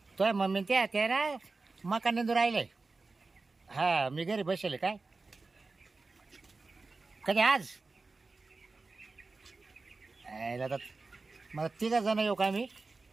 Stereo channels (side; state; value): left; quieter; 3.8 dB